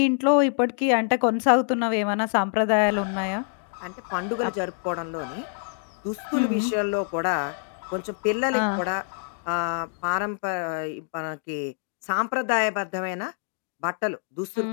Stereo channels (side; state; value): right; silent; 59 dB below the other